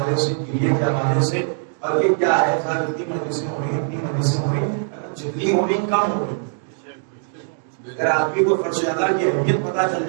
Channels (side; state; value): left; silent; digital silence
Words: سے، کریے کے حوالے سے. اور یہ کیا ہے صاحب، اتنی مجلسیں ہو رہی، اتنی مجلسیں ہو رہی، جتنی ہو رہی کم ہو رہی. اگر آدمی کو فرش اعلیٰ کی اہمیت پتہ چل